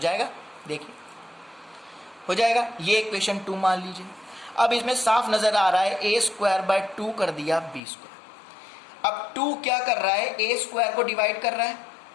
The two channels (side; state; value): right; drops out; at 7.8 s